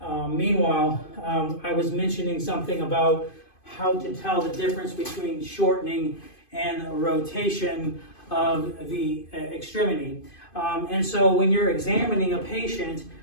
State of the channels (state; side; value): late; right; 2.5 ms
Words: Meanwhile, I was mentioning something about how to tell the difference between shortening and rotation of the extremity. And so when you're examining a patient